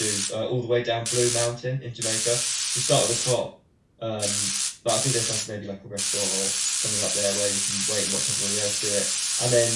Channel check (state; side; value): identical; both; correlation 1.00